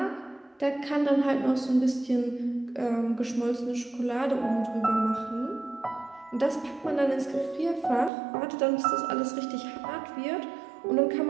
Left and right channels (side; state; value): left; drops out; at 8.1 s